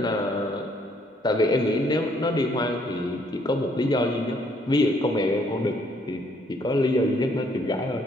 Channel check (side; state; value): both; normal; correlation 0.67